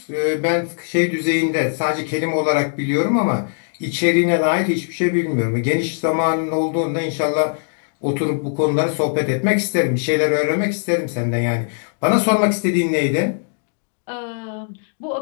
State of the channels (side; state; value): right; silent; digital silence